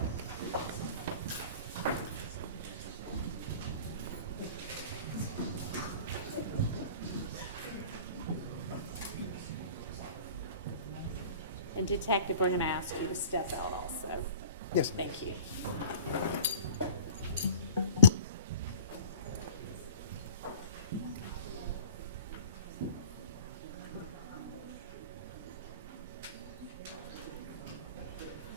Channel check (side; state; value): both; inverted; correlation -0.43